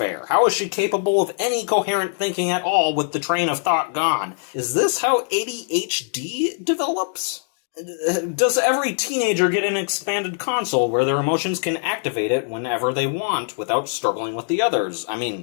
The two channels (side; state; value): right; silent; digital silence